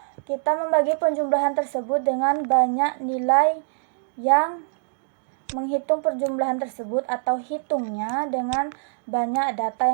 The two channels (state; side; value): silent; left; digital silence